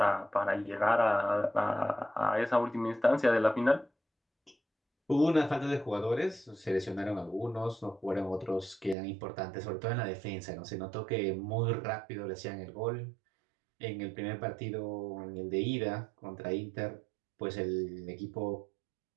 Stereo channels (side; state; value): left; drops out; at 9.0 s